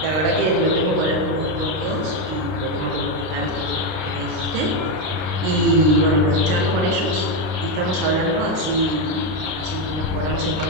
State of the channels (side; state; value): left; late; 32 ms